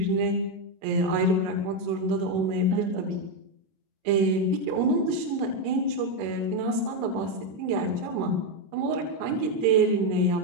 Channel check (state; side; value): late; left; 26 ms